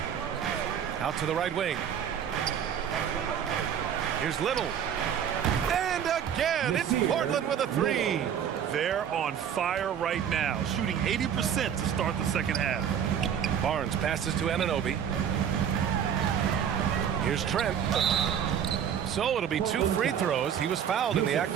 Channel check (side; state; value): left; quieter; 8.7 dB